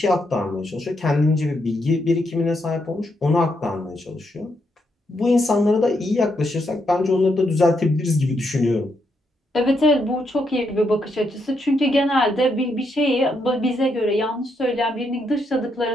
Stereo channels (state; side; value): normal; both; correlation 0.79